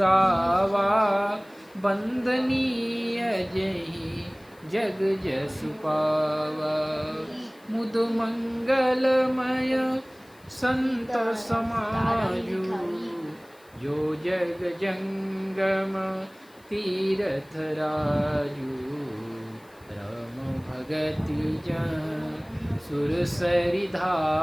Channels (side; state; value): left; noise; hiss, 29 dB below the sound